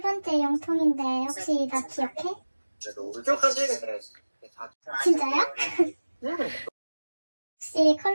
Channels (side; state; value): both; inverted; correlation -1.00